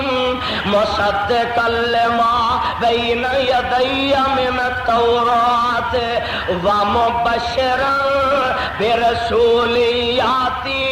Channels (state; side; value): identical; both; correlation 1.00